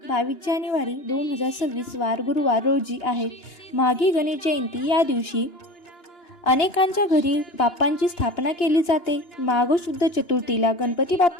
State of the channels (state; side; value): late; right; 2.9 ms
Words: 22 जानेवारी 2026 वार गुरुवार रोजी आहे माघी गणेश जयंती। या दिवशी अनेकांच्या घरी बाप्पांची स्थापना केली जाते। माघ शुद्ध चतुर्थीला गणपती